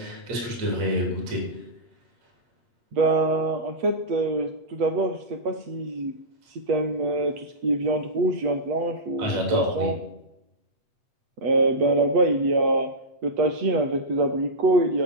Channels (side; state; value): left; late; 8.3 ms